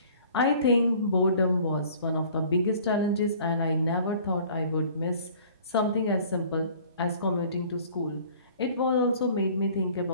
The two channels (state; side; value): inverted; both; correlation -0.51